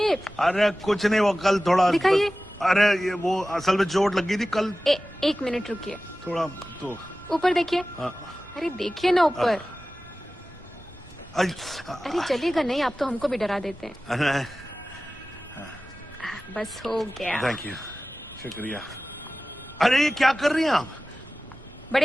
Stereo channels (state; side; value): normal; both; correlation 0.96